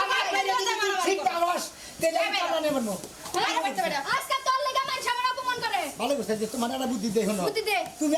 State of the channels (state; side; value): identical; both; correlation 1.00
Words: আমার মেরে দিকে ঠিক পারস তেলে কামলা নিয়ে মারমু আজকে তোর লাগা মান সামনে অপমান করে ভালো করছিস যে তোমার একটা বুদ্ধি দে হলো বুদ্ধি দে তুমি